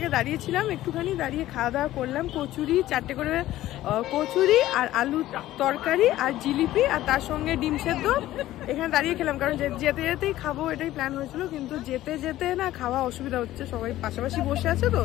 দাঁড়িয়েছিলাম, একটুখানি দাঁড়িয়ে খাওয়া দাওয়া করলাম। কচুরি 4টে করে কচুরি, আর আলু তরকারি, আর জিলিপি, আর তার সঙ্গে ডিম সেদ্ধ এখানে দাঁড়িয়ে খেলাম, কারণ যেতে যেতেই খাবো এটাই প্ল্যান হয়েছিল, কিন্তু যেতে যেতে না খাওয়া অসুবিধা হচ্ছে, সবাই পাশাপাশি বসে আছে তো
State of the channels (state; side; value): quieter; right; 14.8 dB